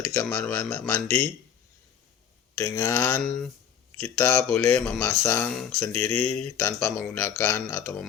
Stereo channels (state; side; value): quieter; right; 8.5 dB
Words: di kamar mandi. Dengan kita boleh memasang sendiri tanpa menggunakan atau